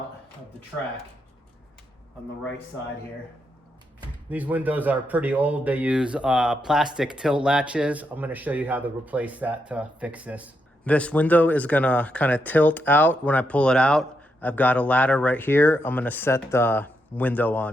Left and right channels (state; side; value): normal; both; correlation 0.82